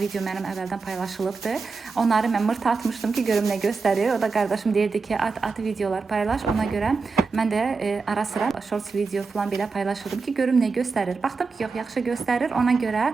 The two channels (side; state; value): left; quieter; 4.5 dB